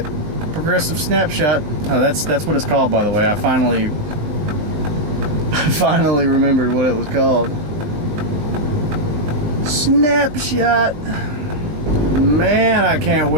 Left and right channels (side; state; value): left; late; 20 ms